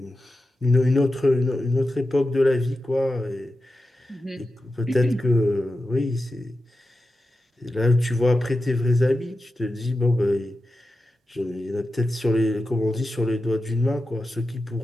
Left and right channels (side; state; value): both; normal; correlation 0.91